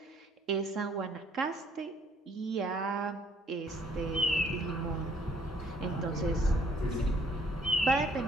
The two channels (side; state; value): both; normal; correlation 0.63